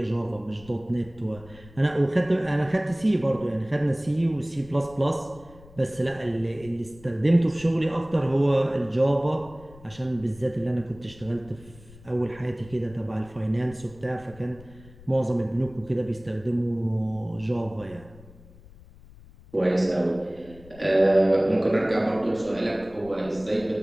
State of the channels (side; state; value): left; noise; rumble, 22 dB below the sound